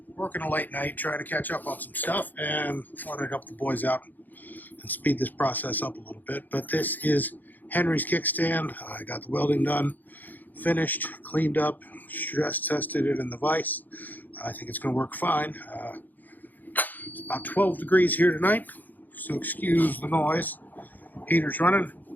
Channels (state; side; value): late; right; 0.085 ms